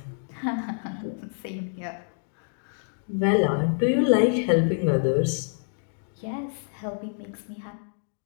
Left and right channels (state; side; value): silent; right; digital silence